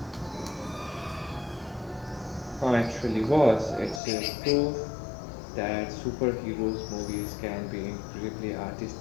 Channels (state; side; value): drops out; right; at 4.0 s